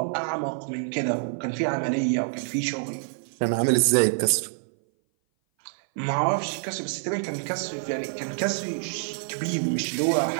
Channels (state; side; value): silent; left; 58 dB below the other